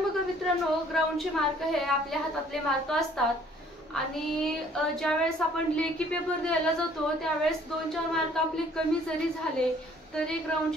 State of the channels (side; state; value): both; normal; correlation 0.58